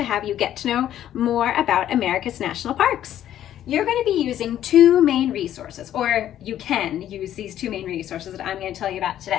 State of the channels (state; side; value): quieter; right; 11.5 dB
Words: have you get to know more about America's national parks. You're going to be using two main resources, or you can use these two main resources that I'm going to tell you about